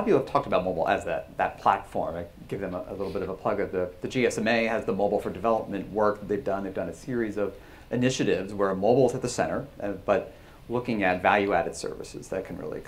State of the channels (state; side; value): identical; both; correlation 1.00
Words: of you have talked about mobile as that platform. I give them a little bit of a plug. The GSMA has the Mobile for Development work that they've done. They've done a series of initiatives where mobile is at the center, but looking at value-added services that can really